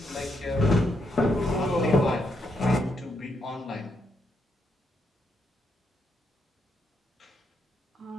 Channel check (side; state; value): both; normal; correlation 0.79